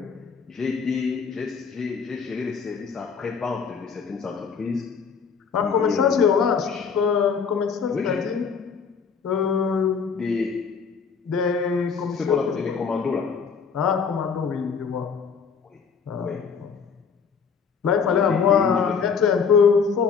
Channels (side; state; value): right; quieter; 6.0 dB